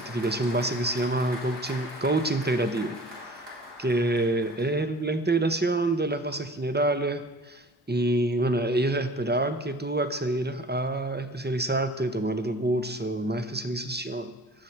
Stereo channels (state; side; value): normal; both; correlation 0.45